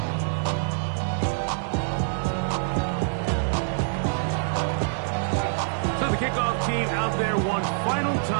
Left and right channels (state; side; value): silent; left; digital silence